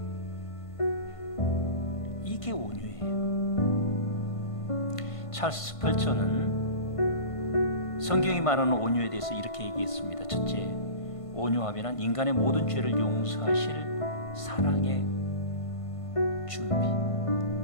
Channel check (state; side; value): late; right; 1.5 ms